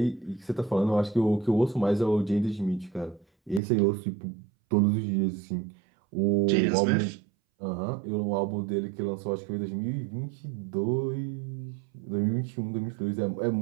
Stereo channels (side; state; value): left; drops out; at 3.6 s